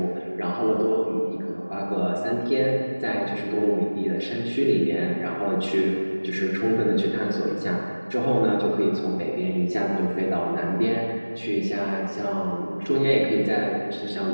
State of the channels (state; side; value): inverted; both; correlation -1.00